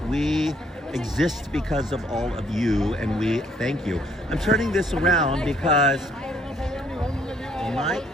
We exist because of all of you, and we thank you. I'm turning this around because Mike,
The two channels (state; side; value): normal; both; correlation 0.65